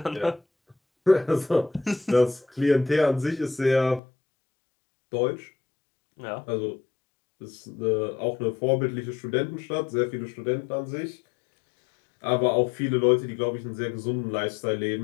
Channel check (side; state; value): right; drops out; at 4.0 s